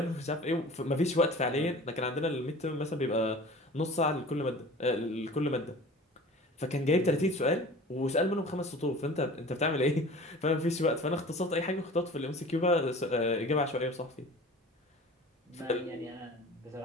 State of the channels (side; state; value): both; normal; correlation 0.41